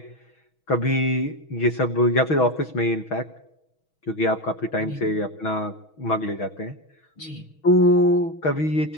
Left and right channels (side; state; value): right; late; 6.3 ms